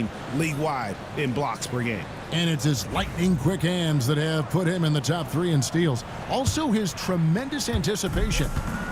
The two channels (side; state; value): both; identical; correlation 1.00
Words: league-wide in blocks per game. And it's his lightning-quick hands that have put him in the top 3 in steals. Also, his tremendous anticipation.